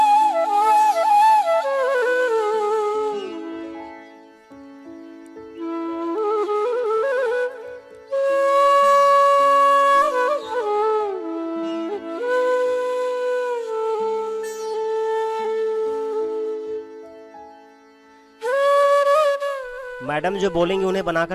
मैडम जो बोलेंगी उन्हें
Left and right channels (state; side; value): identical; both; correlation 1.00